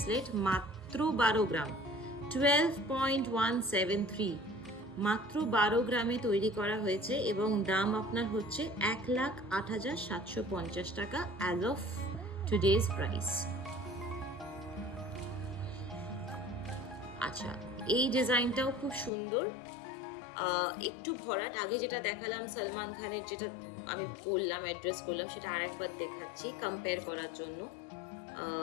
মাত্র 12 গ্রাম, 12.173, মাত্র 12 গ্রামে তৈরি করা হয়েছে, এবং দাম আপনার হচ্ছে 1,08,750 টাকা অ্যাজ অফ টুডেজ প্রাইস। আচ্ছা, এই ডিজাইনটাও খুব সুন্দর, একটু ভরাট। আগে যেটা দেখালাম সলমান খানের, যেটা আমি বললাম অ্যাড্রেস করলাম, সেটা আরেকবার দেখাচ্ছি কম্পেয়ার করার জন্য।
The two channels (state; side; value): drops out; right; at 19.1 s